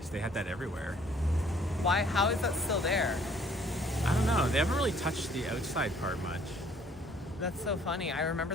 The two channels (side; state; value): both; normal; correlation 0.59